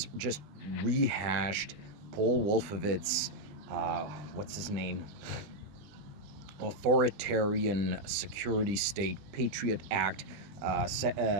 just rehashed Paul Wolfowitz, what's his name? Authoritarian security state, Patriot Act,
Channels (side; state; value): left; late; 20 ms